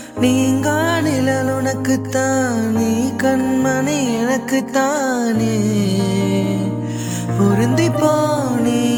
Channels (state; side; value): identical; both; correlation 1.00